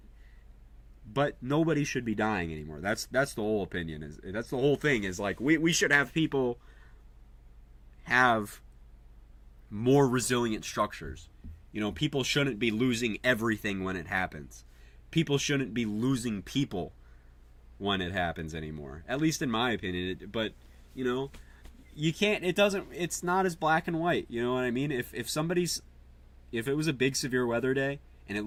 But nobody should be dying anymore. That's the whole opinion. That's the whole thing is, like, we should have people have more resilient structures. You know, people shouldn't be losing everything when it happens. People shouldn't be losing people when it happens anymore. At least in my opinion. But, you know... You can't, it's not as black and white, you know what I mean? If it was a big severe weather day, and it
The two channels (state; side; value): identical; both; correlation 1.00